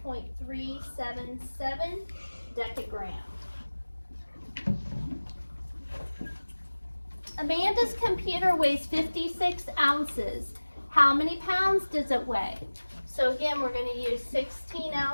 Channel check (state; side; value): inverted; both; correlation -1.00